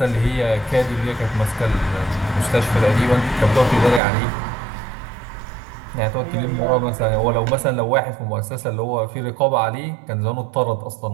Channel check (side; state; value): left; drops out; at 4.0 s